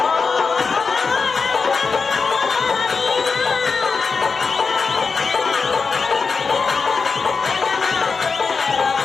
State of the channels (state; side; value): quieter; right; 4.9 dB